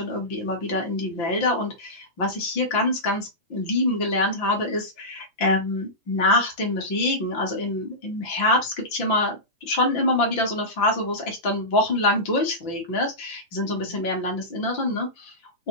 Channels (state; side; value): late; right; 5.9 ms